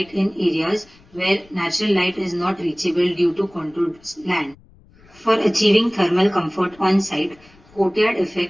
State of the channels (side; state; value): left; noise; rumble, 28 dB below the sound